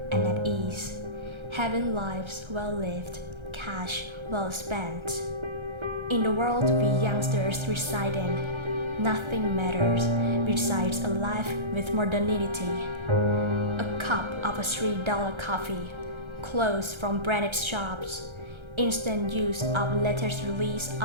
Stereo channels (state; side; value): late; left; 1.3 ms